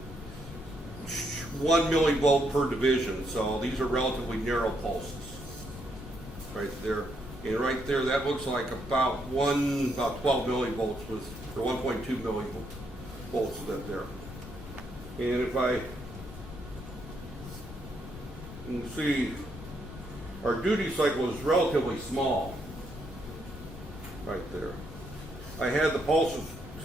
1 millivolt per division. So these are relatively narrow pulses right there. And right there, that looks like about 12 millivolts was, or 1.2 millivolts is that there. And if you can see, our duty cycle is relatively small right there. I had the pulses,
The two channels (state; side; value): noise; left; rumble, 13 dB below the sound